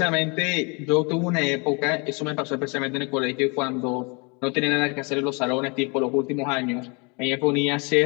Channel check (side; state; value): right; quieter; 31.4 dB